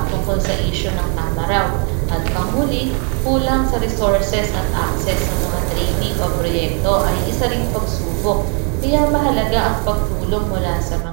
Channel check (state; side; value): quieter; left; 36.5 dB